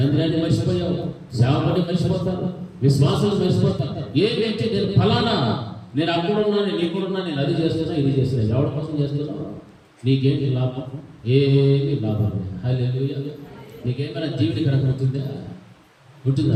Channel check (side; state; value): both; identical; correlation 1.00